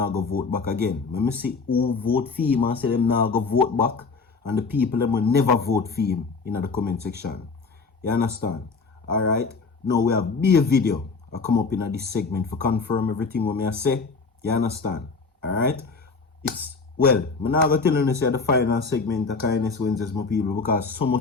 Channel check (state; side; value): quieter; right; 4.4 dB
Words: going to vote back again. Let me see who vote for him and say them not going to vote back, and the people them will never vote for him in the comment section. You understand? Alright, now we have be a video I come up in this segment for confirm everything what I say. You understand? Alright? It's well, I'm not going to tell you say the final segment of Kindness Wednesdays, my people, because so